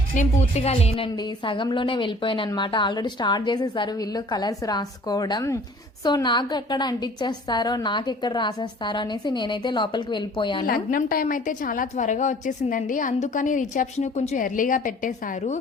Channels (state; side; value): normal; both; correlation 0.51